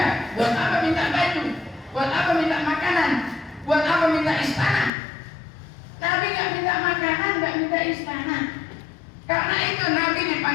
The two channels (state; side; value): drops out; right; at 4.9 s